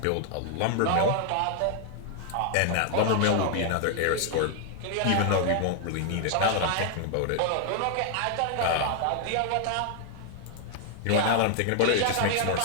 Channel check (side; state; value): both; different; correlation 0.00